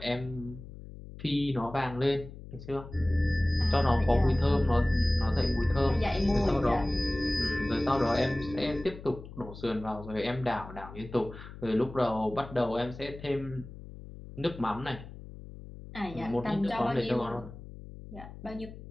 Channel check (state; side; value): noise; left; hum, 14 dB below the sound